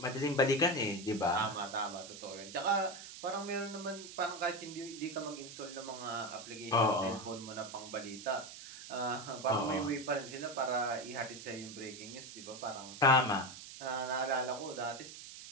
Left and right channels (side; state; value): right; noise; hiss, 13 dB below the sound